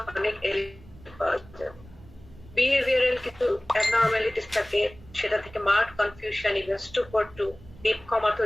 অনেক পাওয়া যায়। বিহেভিয়ারাল কিছু অ্যাবনর্মালিটিস থাকে, সেটা থেকে mark confusion, even stupor to deep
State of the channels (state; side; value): noise; right; rumble, 21 dB below the sound